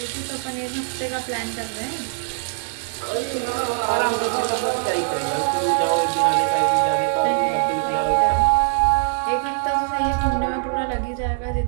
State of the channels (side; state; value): left; silent; digital silence